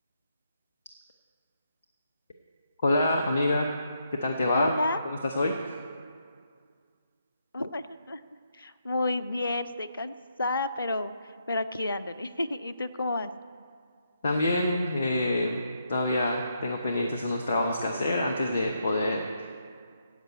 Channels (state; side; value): inverted; both; correlation -0.78